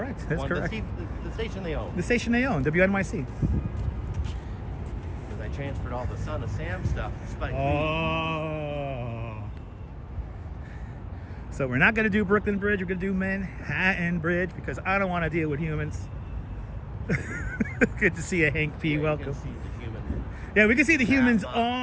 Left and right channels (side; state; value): both; identical; correlation 1.00